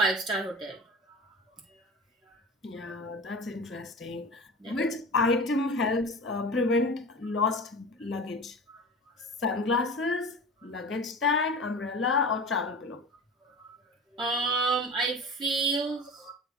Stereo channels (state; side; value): normal; both; correlation 0.34